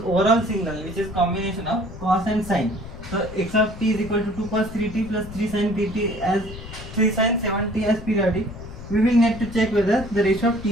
signal, which is combination of cos and sine, so x of t is equal to 2 cos 3t plus 3 sin 3t as 3 sin 7t as periodic, we will need to check whether the ratio of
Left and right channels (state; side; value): noise; left; rumble, 13 dB below the sound